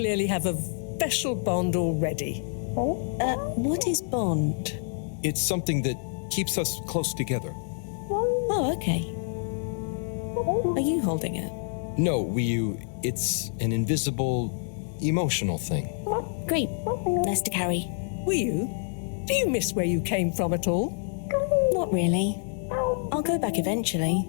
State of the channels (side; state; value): right; silent; 60 dB below the other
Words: have a special bond already. What is bond? It's something that keeps us close together. Oh, okay. Are you holding it? No, Wiyu, it's an invisible, emotional thing. Great. Nice to carry. Wiyu, do you miss where you came from at all? Not really. I'll go back eventually,